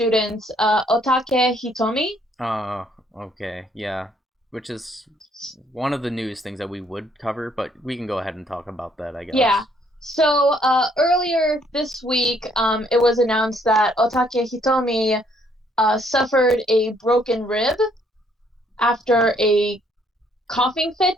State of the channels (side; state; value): both; normal; correlation 0.67